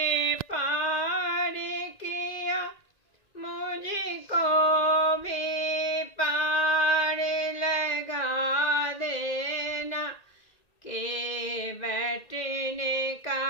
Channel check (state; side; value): late; right; 1.9 ms